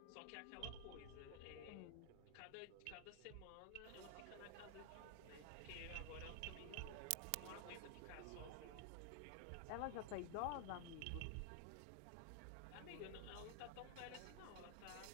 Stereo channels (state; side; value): different; both; correlation 0.00